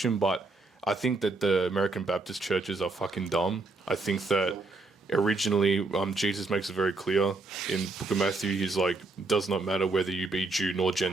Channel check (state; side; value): quieter; left; 3.4 dB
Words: but I think that the American Baptist churches are fucking dumb. I think that originally, Jesus makes it very clear in Book of Matthew. He's like, does not matter whether you be Jew nor